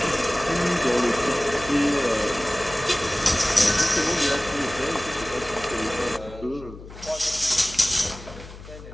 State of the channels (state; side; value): noise; left; hum, 15 dB below the sound